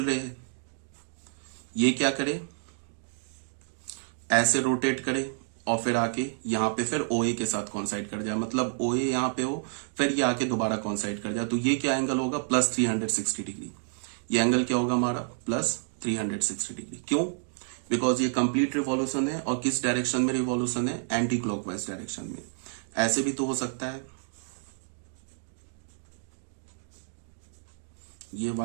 रे है, ये क्या करे, ऐसे रोटेट करे और फिर आके यहां पे फिर ओ ए के साथ कॉन्साइड कर जाए, मतलब ओ ए यहां पे हो, फिर ये आके दोबारा कॉन्साइड कर जाए, तो ये क्या एंगल होगा, प्लस 360 डिग्री। ये एंगल क्या होगा हमारा, प्लस 360 डिग्री। क्यों, बिकॉज ये कंप्लीट रिवॉल्यूशन है, और किस डायरेक्शन में रिवॉल्यूशन है, एंटी क्लॉकवाइज डायरेक्शन में। ऐसे भी तो हो सकता है, ये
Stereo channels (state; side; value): silent; left; digital silence